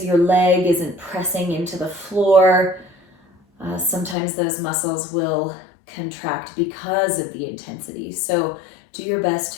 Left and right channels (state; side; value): drops out; right; at 4.2 s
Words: your leg isn't pressing into the floor. Sometimes those muscles will contract because of the intensity. So do your best